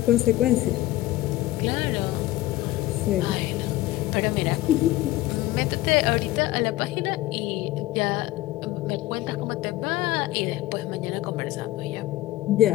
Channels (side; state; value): right; quieter; 16.3 dB